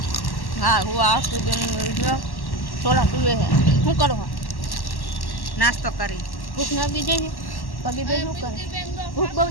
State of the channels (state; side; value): late; right; 1.1 ms